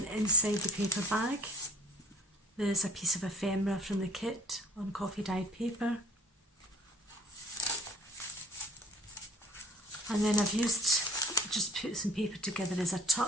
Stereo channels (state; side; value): normal; both; correlation 0.51